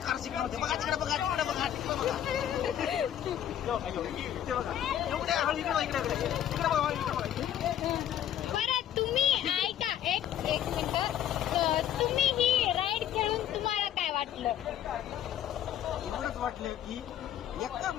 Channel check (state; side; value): quieter; right; 10.9 dB